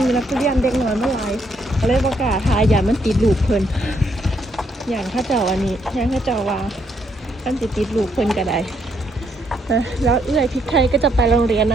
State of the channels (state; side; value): normal; both; correlation 0.74